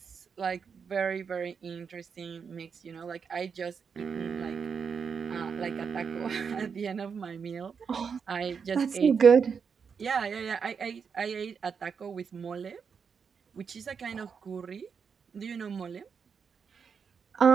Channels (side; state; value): left; quieter; 6.2 dB